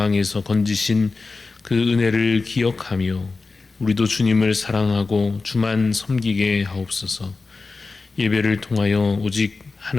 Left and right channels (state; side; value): quieter; right; 3.9 dB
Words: 건지신 그 은혜를 기억하며 우리도 주님을 사랑하고 주만 섬기게 하옵소서. 예배를 통하여 오직